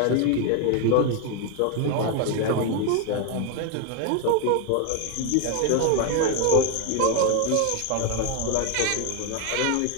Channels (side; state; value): both; different; correlation 0.01